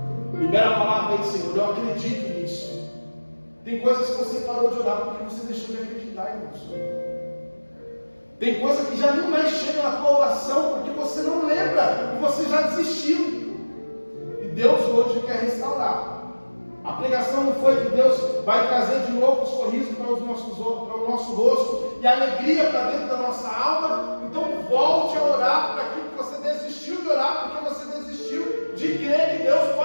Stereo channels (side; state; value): both; inverted; correlation -1.00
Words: Libera a palavra aí, Senhor. Eu acredito nisso. Tem coisas que você parou de orar porque você deixou de acreditar, irmãos. Tem coisa que já nem mais chega na tua oração porque você não lembra e você já desistiu. E Deus hoje quer restaurar. A pregação não foi que Deus vai trazer de novo o sorriso para o nosso rosto e a alegria para dentro da nossa alma. Então volte a orar para aquilo que você desistiu de orar, porque você desistiu de crer que Deus